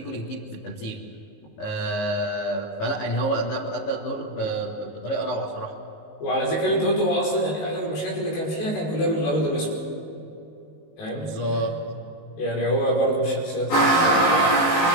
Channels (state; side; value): late; right; 19 ms